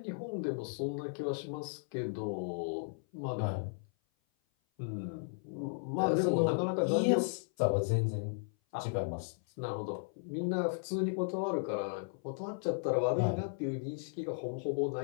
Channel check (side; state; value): right; silent; 54 dB below the other